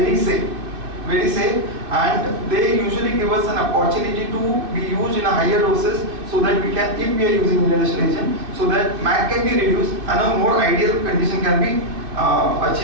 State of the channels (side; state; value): left; late; 2.5 ms